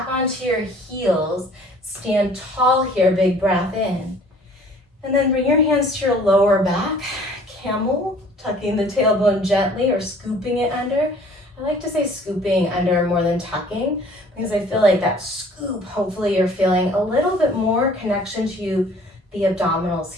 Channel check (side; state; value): both; normal; correlation 0.53